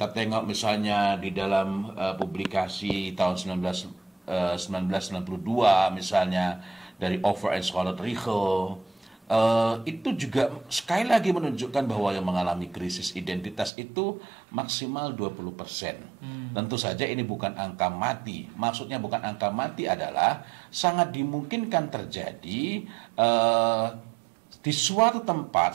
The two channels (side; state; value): left; drops out; at 13.7 s